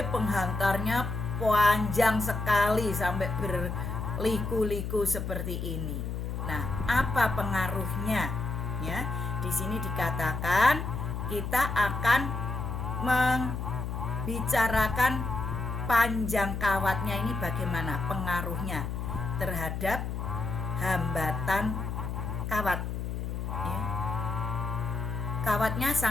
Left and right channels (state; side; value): noise; left; hum, 4 dB below the sound